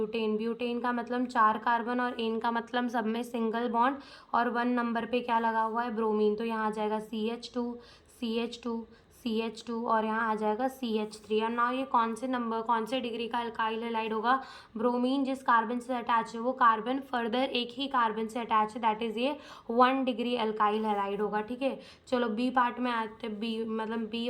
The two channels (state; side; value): identical; both; correlation 1.00